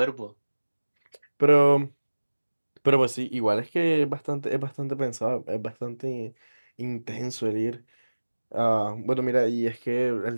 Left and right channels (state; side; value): inverted; both; correlation -1.00